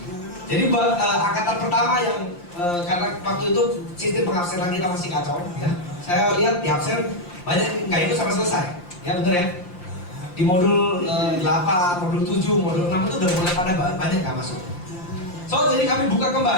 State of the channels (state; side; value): late; right; 5.7 ms